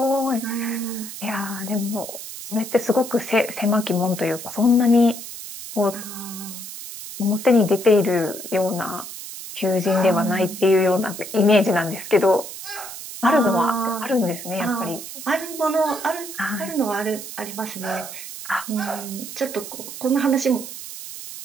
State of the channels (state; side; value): noise; right; hiss, 11 dB below the sound